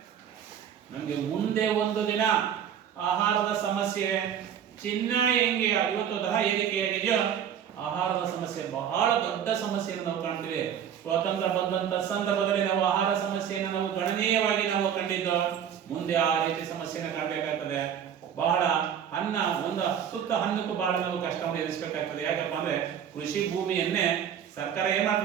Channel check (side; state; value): left; quieter; 8.8 dB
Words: ನಮ್ಗೆ ಮುಂದೆ ಒಂದು ದಿನ ಆಹಾರದ ಸಮಸ್ಯೆ, ಚಿನ್ನ ಹೆಂಗೆ ಇವತ್ತು ದರ ಏರಿಕೆಯಾಗಿದೆಯೋ ಆಹಾರದ ಸಮಸ್ಯೆ ಬಹಳ ದೊಡ್ಡ ಸಮಸ್ಯೆಯನ್ನು ನಾವು ಕಾಣ್ತೀವಿ. ಸ್ವಾತಂತ್ರ್ಯ ಬಂದಂತ ಸಂದರ್ಭದಲ್ಲಿ ನಾವು ಆಹಾರ ಸಮಸ್ಯೆಯನ್ನು ನಾವು ಗಣನೀಯವಾಗಿ ನಾವು ಕಂಡಿದ್ದು. ಮುಂದೆ ಆ ರೀತಿ ಸಮಸ್ಯೆನ ಕಾಣಬೇಕಾಗ್ತದೆ. ಬಹಳ ಅನ್ನ, ಒಂದು ಸುತ್ತ ಹಣ್ಣಕ್ಕೂ ಬಹಳ ನಾವು ಕಷ್ಟವನ್ನು ಎದುರಿಸಬೇಕಾಗ್ತದೆ. ಯಾಕಪ್ಪ ಅಂದ್ರೆ ಕೃಷಿ ಭೂಮಿಯನ್ನೇ ಸರ್ಕಾರ ಏನ್